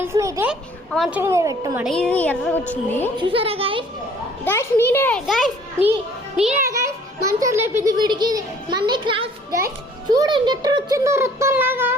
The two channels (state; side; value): normal; both; correlation 0.55